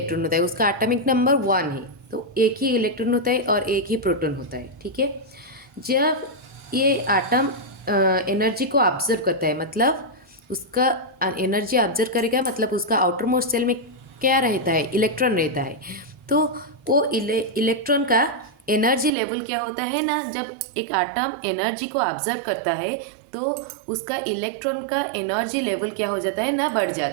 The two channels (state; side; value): drops out; left; at 19.1 s